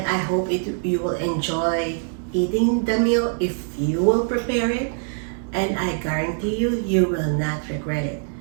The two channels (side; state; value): left; silent; 63 dB below the other